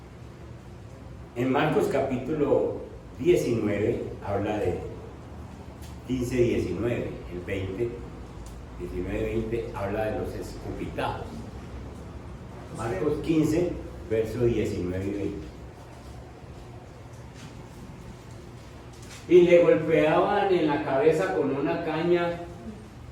En Marcos capítulo 19 habla de 15, 19, el 20, 19, 20 habla de los escupitazos. Marcos 15, verso 19 y 20. Y le golpeaban en la cabeza con una caña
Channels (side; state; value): both; identical; correlation 1.00